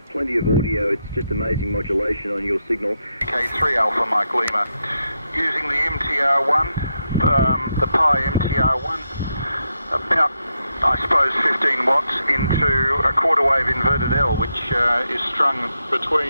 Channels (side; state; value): both; inverted; correlation -0.83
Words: Plenty of audio, it's just amazing modulation on your signal. VK3 Alpha Mike Lima, using the MTR1 the Pi MTR1, about, I suppose, 15 watts into a quarter wave inverted L, which is strung